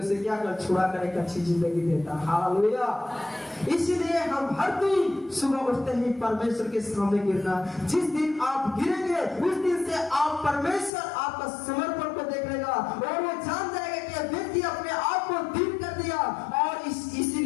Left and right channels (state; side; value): drops out; right; at 10.9 s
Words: से क्या कर छुड़ा कर एक अच्छी जिंदगी देता। हालेलुया। इसलिए हम हर दिन सुबह उठते ही परमेश्वर के सामने गिरना। जिस दिन आप गिरेंगे उस दिन से आप परमेश्वर आपका समर्पण को देख लेगा और वो जान जाएगा कि व्यक्ति अपने आप को दीन कर दिया और